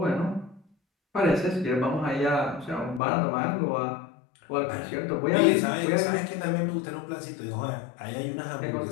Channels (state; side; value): drops out; right; at 3.0 s